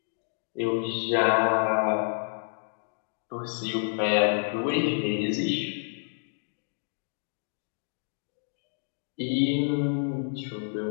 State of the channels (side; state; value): right; silent; digital silence